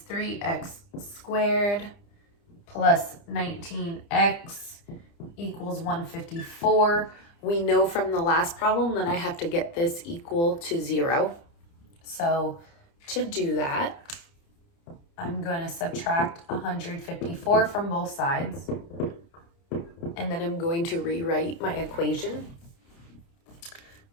3x squared plus 19x equals 154. We know from the last problem that I have to get this equal to 0. So to do that, I'm going to subtract 154 from both sides. And then I'm going to rewrite my equation,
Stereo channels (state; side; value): late; right; 30 ms